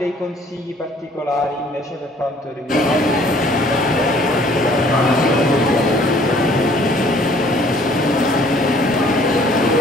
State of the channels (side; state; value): both; normal; correlation 0.57